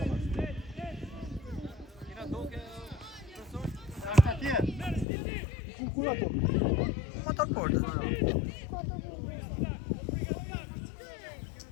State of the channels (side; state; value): right; drops out; at 5.1 s